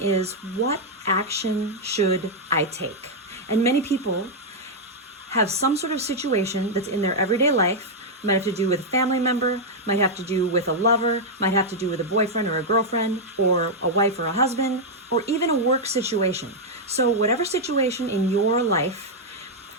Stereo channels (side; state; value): both; normal; correlation -0.03